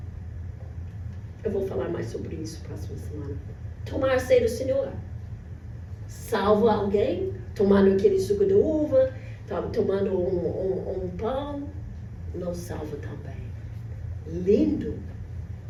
Eu vou falar mais sobre isso próxima semana. Tomar a ceia do Senhor salva alguém? Tomando aquele suco de uva, tomando um pão, não salva também. Lindo,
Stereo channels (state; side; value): identical; both; correlation 1.00